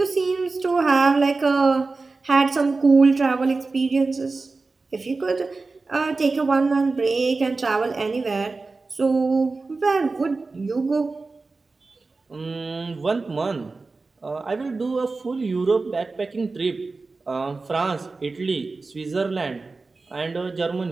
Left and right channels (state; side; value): quieter; left; 3.8 dB